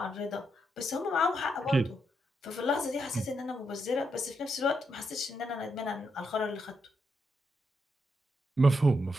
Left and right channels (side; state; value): both; normal; correlation 0.81